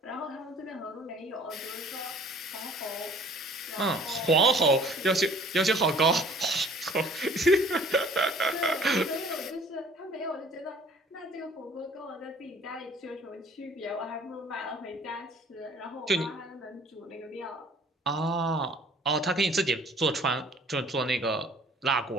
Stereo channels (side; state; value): both; normal; correlation 0.53